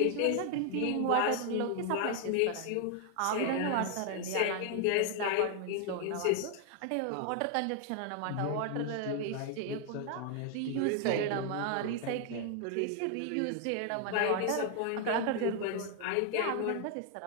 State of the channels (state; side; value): different; both; correlation 0.00